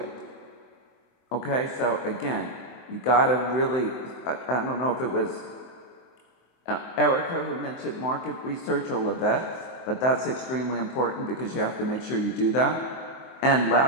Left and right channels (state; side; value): late; right; 23 ms